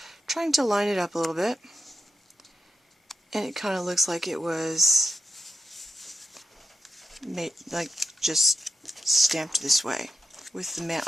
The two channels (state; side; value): normal; both; correlation 0.88